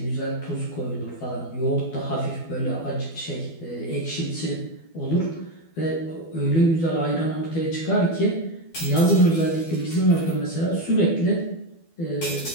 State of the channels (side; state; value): right; late; 12 ms